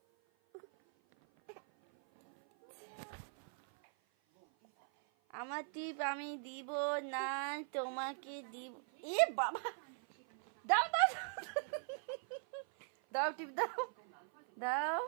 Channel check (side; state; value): left; silent; 51 dB below the other